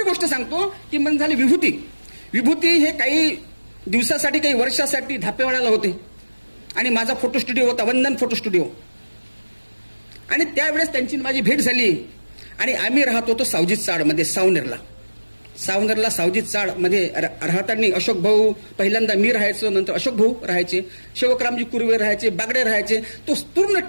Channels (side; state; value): both; inverted; correlation -1.00